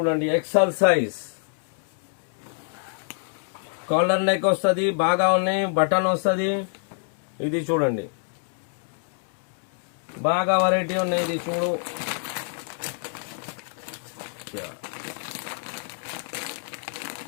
ఎక్స్ఎల్ సైజ్ కాలర్ నెక్ వస్తుంది, బాగా ఉన్నాయి, బటన్ వస్తుంది. ఇది చూడండి బాగా వెరైటీ ఉన్నాయి. ఇది చూడు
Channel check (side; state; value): right; silent; 59 dB below the other